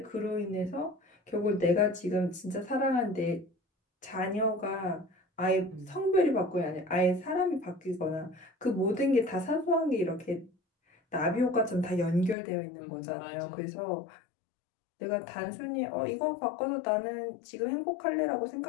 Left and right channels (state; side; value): drops out; right; at 12.4 s